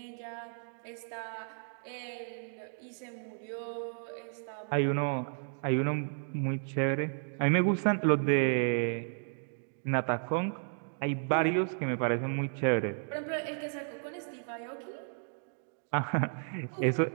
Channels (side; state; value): left; silent; digital silence